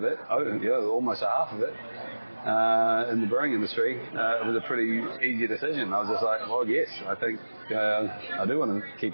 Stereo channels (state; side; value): inverted; both; correlation -1.00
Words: it, almost a half of it. In the brewing industry, it was a pretty easy decision. I was just like, well, yes, I think I do want to keep